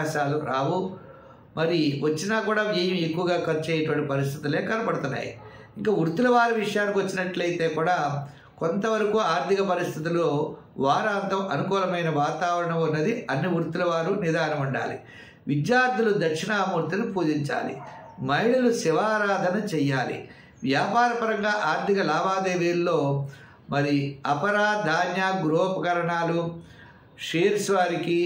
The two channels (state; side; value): identical; both; correlation 1.00